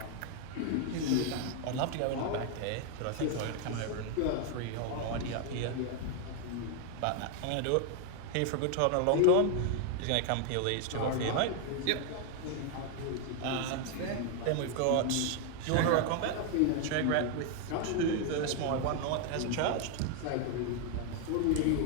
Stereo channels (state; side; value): different; both; correlation 0.00